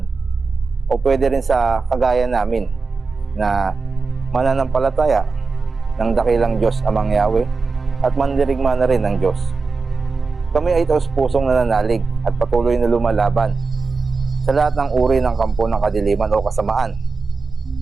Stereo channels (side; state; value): left; quieter; 4.3 dB